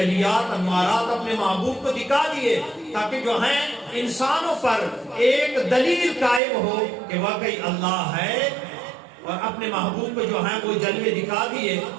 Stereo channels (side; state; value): left; drops out; at 6.4 s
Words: انوارات اپنے محبوب کو دکھا دیے تاکہ جو ہیں انسانوں پر ایک دلیل قائم ہو کہ واقعی اللہ ہے, اور اپنے محبوب کو جو ہیں وہ جلوے دکھا دیے.